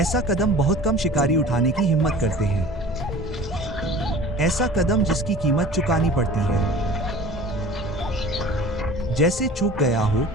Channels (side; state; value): both; normal; correlation 0.42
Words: कदम बहुत कम शिकारी उठाने की हिम्मत करते हैं। ऐसा कदम जिसकी कीमत चुकानी पड़ती है। जैसे चूक गया हो,